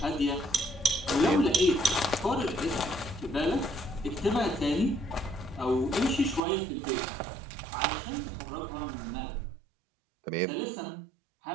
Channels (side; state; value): left; drops out; at 6.4 s